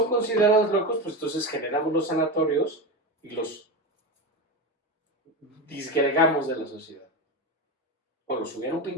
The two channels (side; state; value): both; normal; correlation 0.19